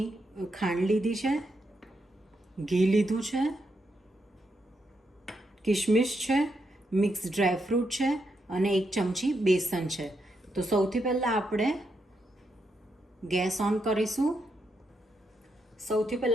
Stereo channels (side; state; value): both; normal; correlation 0.82